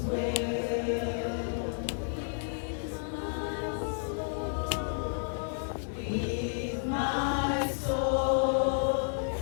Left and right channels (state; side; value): silent; right; digital silence